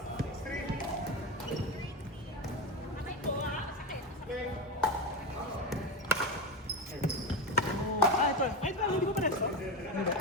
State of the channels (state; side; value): normal; both; correlation 0.19